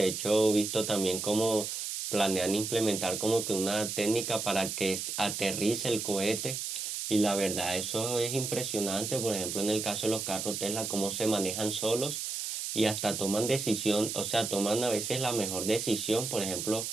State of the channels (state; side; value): noise; right; hiss, 4 dB below the sound